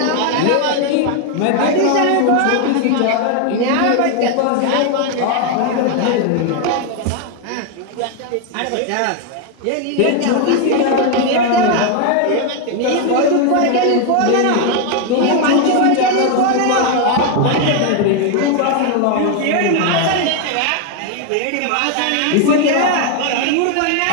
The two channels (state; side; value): different; both; correlation 0.01